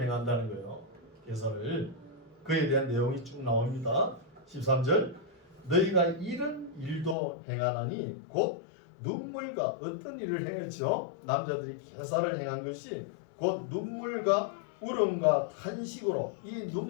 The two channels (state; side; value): drops out; right; at 7.2 s